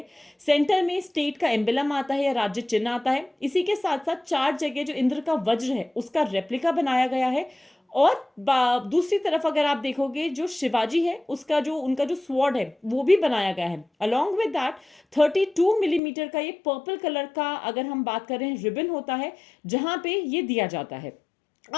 सेंटर में स्टेट का एम्बलम आता है या राज्य चिन्ह आता है। इसी के साथ साथ 4 जगह जो इंद्र का वज्र है उसका रेप्लिका बनाया गया है। और दूसरी तरफ अगर आप देखोगे जो शिवाजी है उसका जो उनका जो स्वॉर्ड है वो भी बनाया गया है। अलॉन्ग विद दैट 32 मिलीमीटर का ये पर्पल कलर का, अगर हम बात कर रहे हैं, रिबन होता है जहां पे ये दिया जाता है।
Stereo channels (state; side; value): drops out; right; at 16.0 s